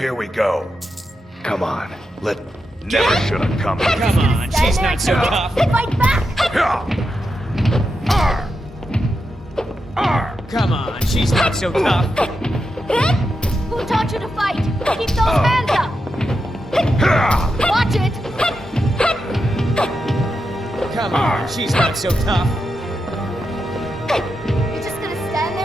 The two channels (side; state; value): both; normal; correlation 0.87